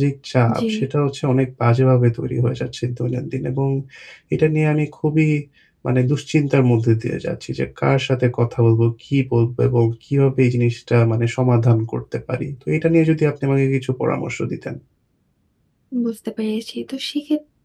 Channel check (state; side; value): identical; both; correlation 1.00